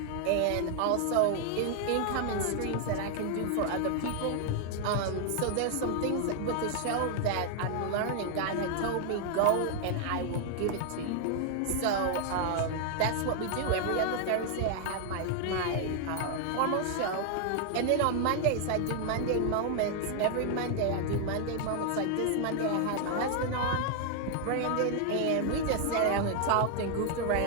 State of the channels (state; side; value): different; both; correlation 0.00